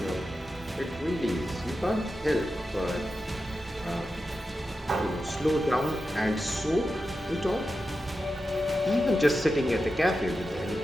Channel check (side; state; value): both; normal; correlation 0.90